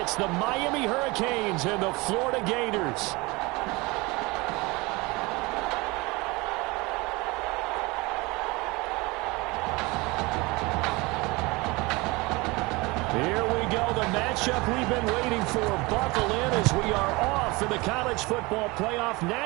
the Miami Hurricanes and the Florida Gators. Here we go, the matchup we've been waiting for. Buckle in as we are off in the College Football Playoff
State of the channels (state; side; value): quieter; left; 24.1 dB